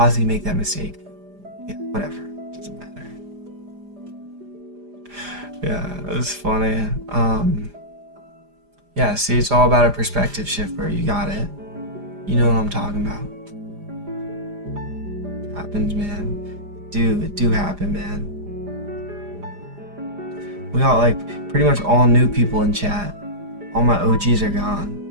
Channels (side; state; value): left; late; 4.9 ms